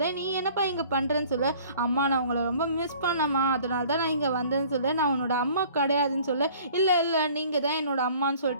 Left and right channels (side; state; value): both; inverted; correlation -0.51